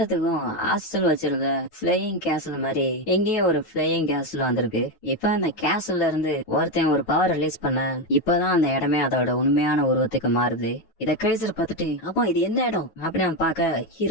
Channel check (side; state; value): right; late; 9.2 ms